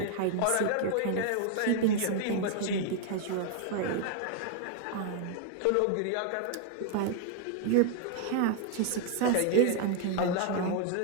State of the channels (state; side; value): different; both; correlation 0.00